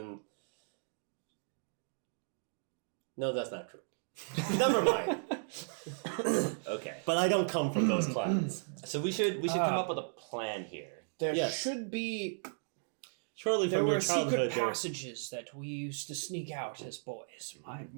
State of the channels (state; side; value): silent; left; digital silence